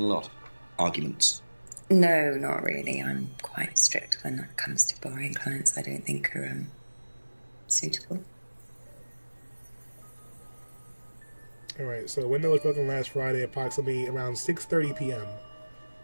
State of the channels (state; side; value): inverted; both; correlation -1.00